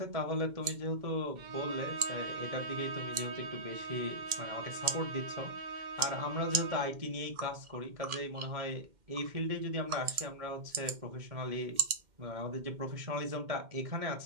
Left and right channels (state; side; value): late; left; 2.1 ms